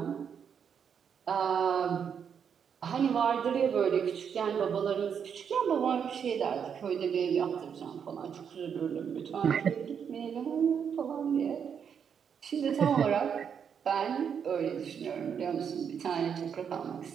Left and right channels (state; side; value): quieter; left; 7.4 dB